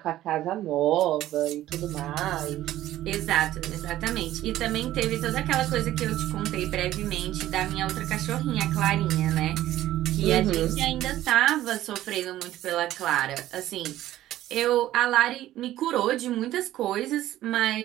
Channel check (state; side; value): quieter; left; 14.1 dB